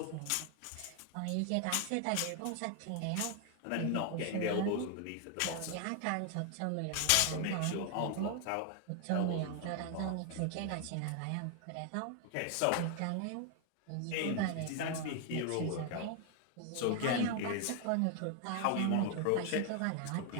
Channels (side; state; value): both; different; correlation 0.00